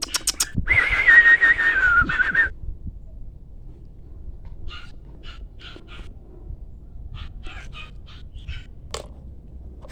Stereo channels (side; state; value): both; identical; correlation 1.00